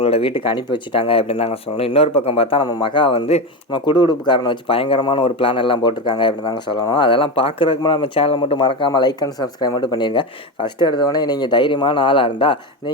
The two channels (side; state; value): both; normal; correlation 0.17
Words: வீட்டுக்கு அனுப்பி வச்சுட்டாங்க அப்படின்னு தாங்க சொல்லணும். இன்னொரு பக்கம் பார்த்தா நம்ம மகா வந்து நம்ம குடுகுடுப்புக்காரனை வச்சு பயங்கரமான ஒரு பிளான் எல்லாம் போட்டிருக்காங்க அப்படின்னு தாங்க சொல்லணும். அதெல்லாம் பார்க்குறதுக்கு நம்ம சேனலை மட்டும் மறக்காமல் லைக் அண்ட் சப்ஸ்கிரைப் மட்டும் பண்ணிடுங்க. ஃபஸ்ட்டு எடுத்தவொடனே நீங்கள் தைரியமான ஆளாக இருந்தால்